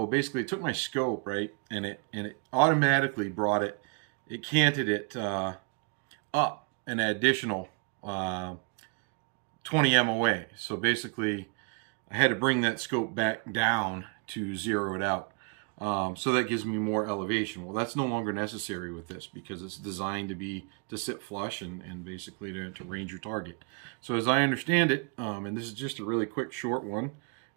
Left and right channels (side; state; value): left; quieter; 37.1 dB